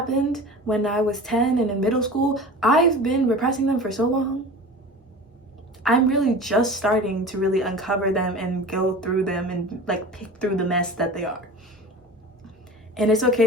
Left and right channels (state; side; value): normal; both; correlation 0.36